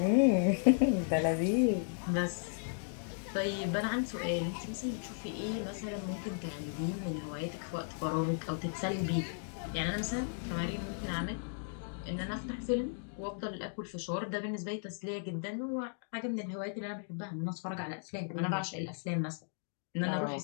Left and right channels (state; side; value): silent; right; digital silence